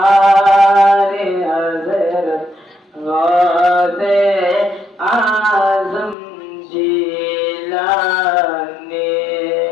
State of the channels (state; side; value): drops out; right; at 6.2 s